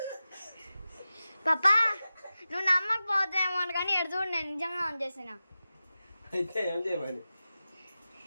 పాపా నువ్వు నమ్మకపోతామో కానీ ఎడు చూడు, నేను నిజంగా ఆన్ చేసిన. అయితే ఏం చేయమని?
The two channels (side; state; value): both; inverted; correlation -0.94